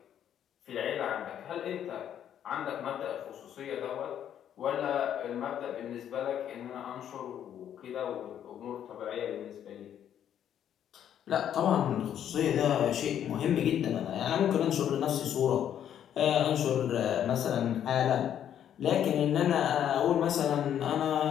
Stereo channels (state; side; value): quieter; right; 9.9 dB